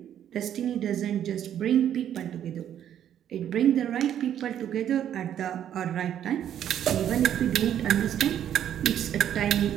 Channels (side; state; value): left; quieter; 10.2 dB